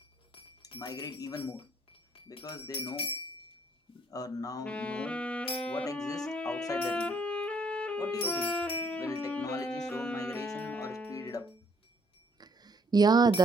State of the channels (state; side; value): normal; both; correlation 0.66